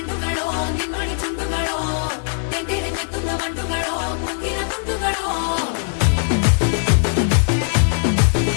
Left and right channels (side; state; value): right; silent; digital silence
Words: ನಿನ್ನೊಳಿ ಚುಂಡುಗಳೋ ತೆಂಡೆರೆ ಮೆತ್ತುന്ന ಮಂಡುಗಳೋ ಮುಂಗಿನ ತುಂಡುಗಳೋ